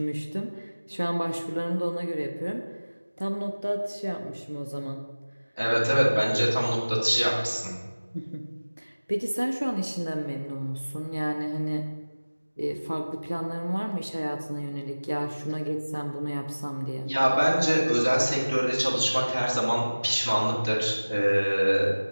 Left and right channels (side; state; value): both; inverted; correlation -1.00